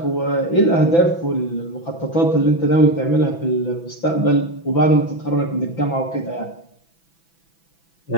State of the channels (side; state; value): right; late; 6.0 ms